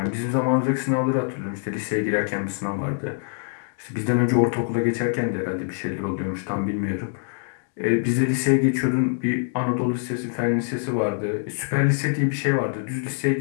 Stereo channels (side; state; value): right; silent; 60 dB below the other